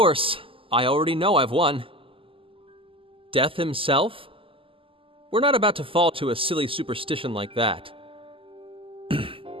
I already know I've won. Death himself? We're not about to fall to a silly superstition like that.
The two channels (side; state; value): left; late; 0.26 ms